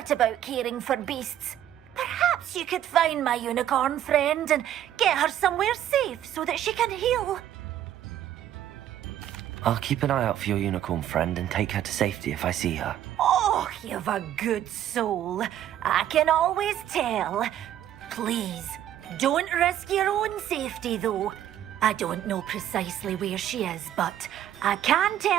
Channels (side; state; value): left; quieter; 11.4 dB